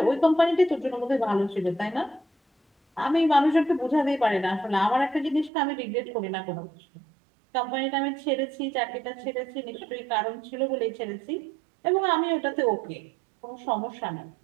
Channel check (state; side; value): drops out; left; at 5.5 s